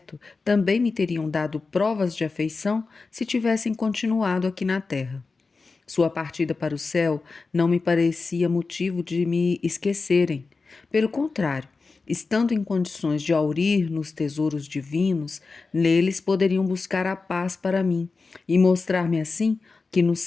também me teriam dado provas de afeição se tivessem continuado aqui na terra. Sua partida para o céu não me parecia motivo de me esquecerem. Pelo contrário, estando em condições de aurir nos tesouros divinos, neles poderiam buscar a paz para mim e mostrar-me assim que no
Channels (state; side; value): quieter; right; 4.2 dB